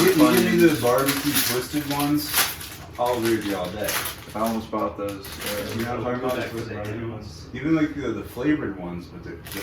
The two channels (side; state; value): both; identical; correlation 1.00